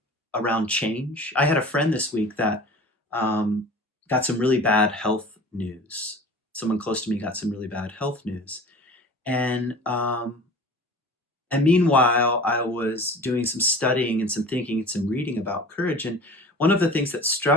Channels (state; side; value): normal; both; correlation 0.40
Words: around change. I had a friend this week that um, got some really bad health news. Someone close to me got some really bad health news, and meanwhile, I was doing some studying and some thinking and some reading about courage. And one of the things that